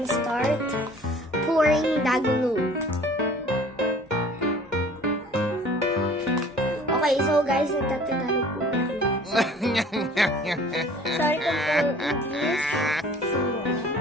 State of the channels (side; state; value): both; normal; correlation 0.50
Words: start pouring the glue. Okay, so guys, nagtatagalog po kami. Sorry kung po English.